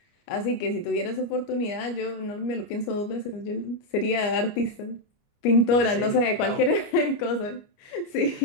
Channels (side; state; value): right; late; 29 ms